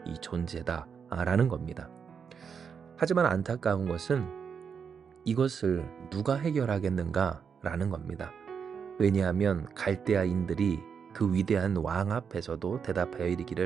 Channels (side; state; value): left; quieter; 6.6 dB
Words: 이 존재다라는 겁니다. 하지만 안타까운 것은 이것을 누가 해결하겠는가라는 겁니다. 왜냐하면 갈대아인들이 그 위대한 왕 앞에서도 대답하여